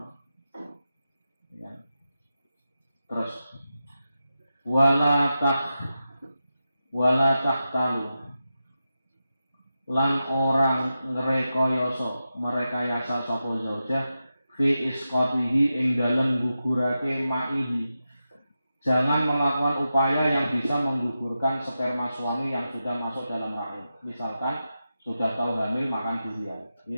Ya. Terus wala talu lan orang merekayasa sapa zaujah fi isqatihi ing dalem gugurake ma'ihi. Jangan melakukan upaya yang bisa menggugurkan sperma suami yang sudah masuk dalam rahim. Misalkan sudah tahu hamil makan durian,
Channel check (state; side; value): inverted; both; correlation -0.91